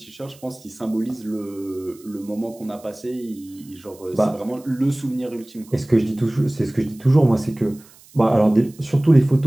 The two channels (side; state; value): right; noise; hiss, 25 dB below the sound